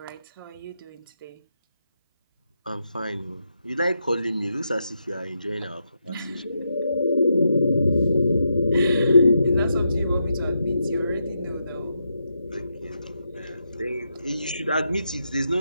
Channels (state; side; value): inverted; both; correlation -0.83